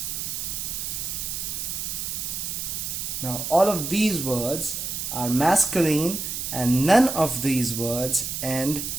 Now all of these words are masculine and none of these words end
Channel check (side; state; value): right; noise; hiss, 4 dB below the sound